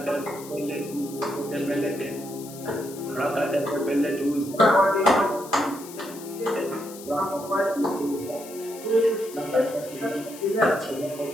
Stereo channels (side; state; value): left; noise; hiss, 16 dB below the sound